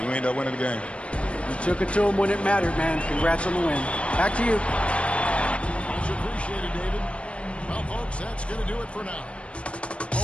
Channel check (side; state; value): right; late; 0.060 ms